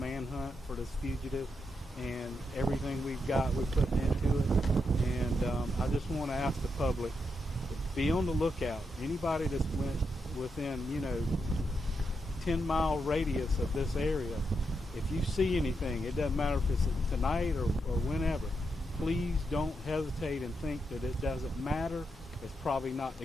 for this fugitive, and everything we've got we're putting into it. And I just want to ask the public, be on the lookout. Anybody that's within 10-mile radius of this area, if you see anything, it doesn't matter if it's tonight or whenever, please don't hesitate and think that it doesn't matter. It's probably not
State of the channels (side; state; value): both; normal; correlation 0.83